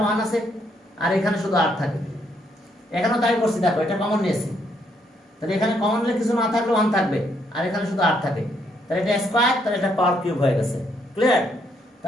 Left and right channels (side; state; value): both; normal; correlation 0.73